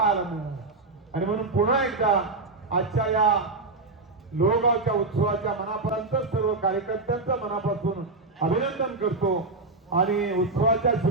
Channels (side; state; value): left; quieter; 3.4 dB